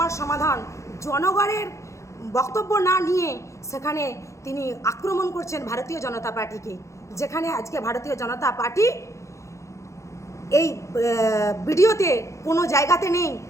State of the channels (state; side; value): late; right; 0.14 ms